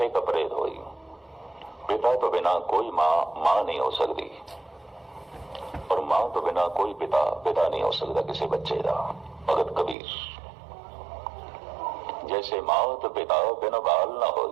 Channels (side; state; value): left; drops out; at 10.0 s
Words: कपड़े धोई। पिता तो बिना कोई माँ नहीं हो सकती, और मां तो बिना कोई पिता नहीं हो सकता किसी बच्चे का। भगत कबीर। जैसे मात पिता बिन बाल न